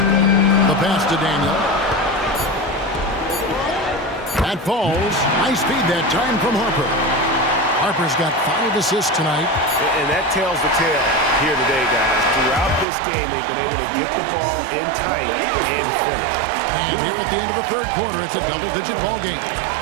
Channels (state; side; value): drops out; left; at 12.9 s